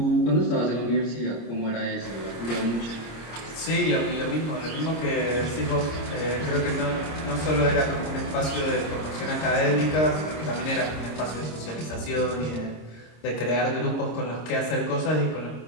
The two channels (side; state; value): right; late; 26 ms